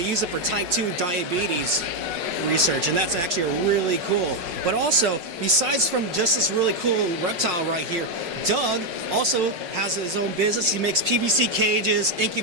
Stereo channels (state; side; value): late; left; 5.8 ms